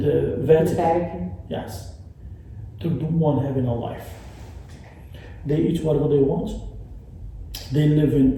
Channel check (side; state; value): both; identical; correlation 1.00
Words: Vatican. Vatican. Yes. They're the one having a life. They eat whatever they want. They live